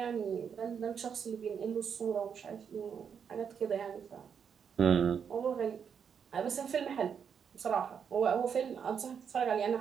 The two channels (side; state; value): left; quieter; 7.2 dB